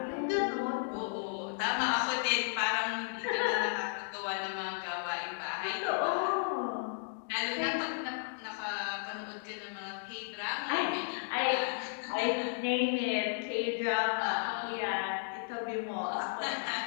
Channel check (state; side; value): silent; right; digital silence